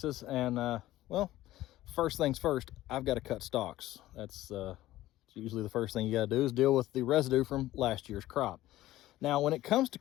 and well, first things first, I've got to cut stalks. That's usually the first thing you got to do is deal with the residue from last year's crop. Now, when it comes to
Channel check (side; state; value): right; quieter; 15.5 dB